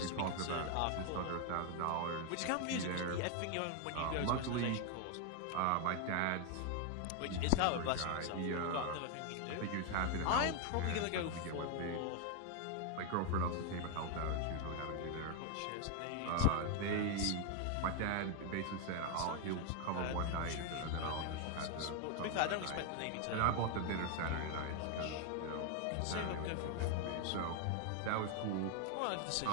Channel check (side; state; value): both; different; correlation 0.01